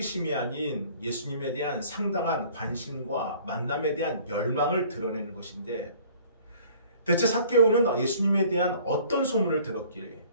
아닌 예수님에 대한 상당한 관심과 만남에 대한 열망을 드러내는 것인데, 대체 삭개오는 예수님에 대한 어떤 소문을 들었기에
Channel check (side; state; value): both; inverted; correlation -0.53